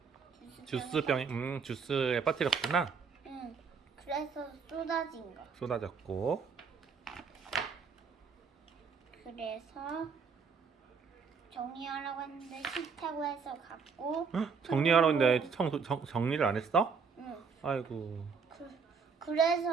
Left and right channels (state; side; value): quieter; left; 5.6 dB